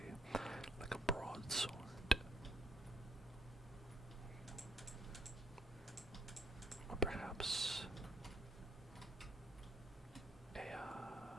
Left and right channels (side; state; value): both; normal; correlation 0.69